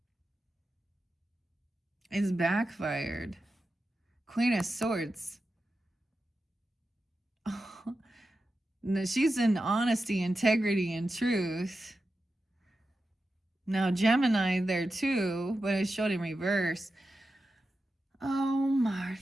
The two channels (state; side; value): normal; both; correlation 0.91